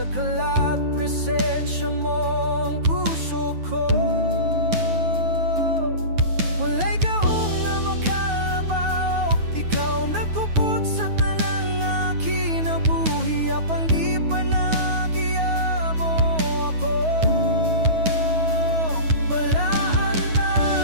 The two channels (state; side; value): late; left; 9.3 ms